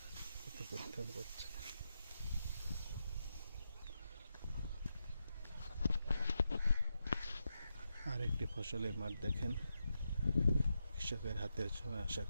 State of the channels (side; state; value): both; inverted; correlation -0.86